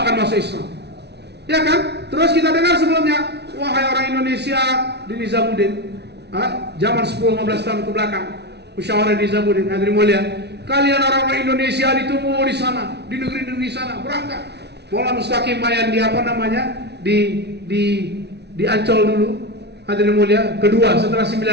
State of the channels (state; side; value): late; left; 0.49 ms